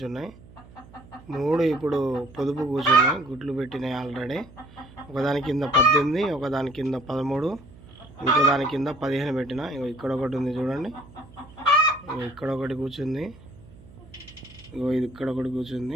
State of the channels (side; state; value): right; noise; hum, 21 dB below the sound